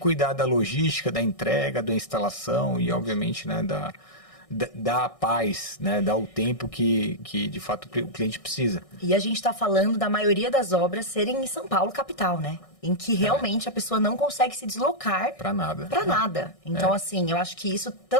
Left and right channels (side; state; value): right; late; 1.6 ms